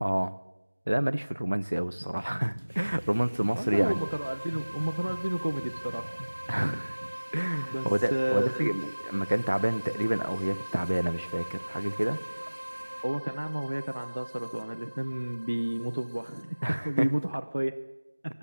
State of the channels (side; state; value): both; inverted; correlation -1.00